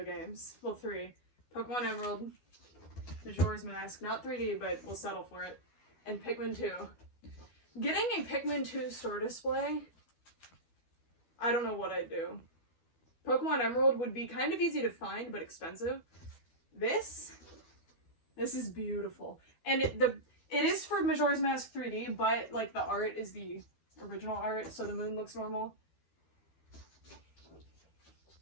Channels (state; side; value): late; right; 12 ms